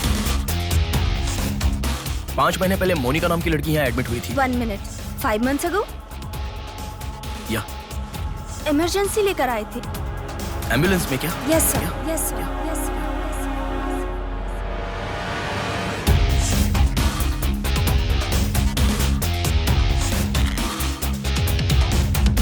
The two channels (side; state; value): both; identical; correlation 1.00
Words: पांच महीने पहले मोनिका नाम की लड़की यहाँ एडमिट हुई थी। 1 मिनट। 5 months ago? या इमरजेंसी लेकर आए थे। एम्बुलेंस में क्या? Yes sir, yes sir, yes sir.